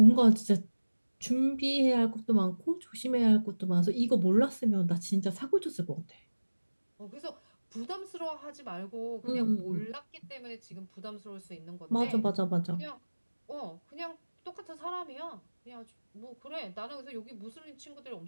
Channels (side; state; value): both; inverted; correlation -1.00